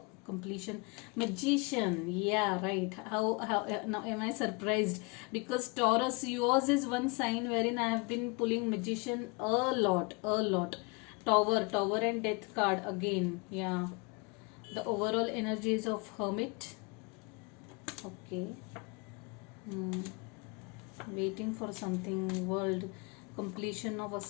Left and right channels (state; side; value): quieter; right; 29.7 dB